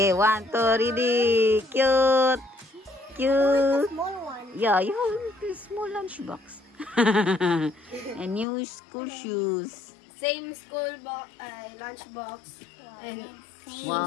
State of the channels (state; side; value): drops out; right; at 8.5 s